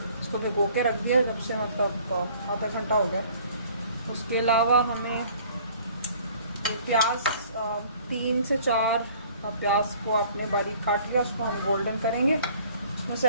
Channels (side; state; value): both; inverted; correlation -0.54